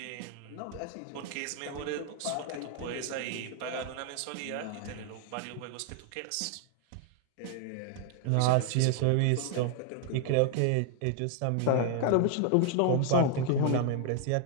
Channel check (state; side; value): different; both; correlation 0.00